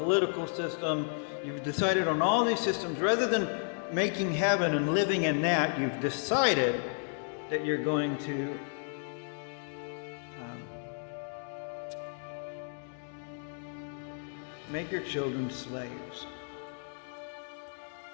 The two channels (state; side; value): silent; right; 56 dB below the other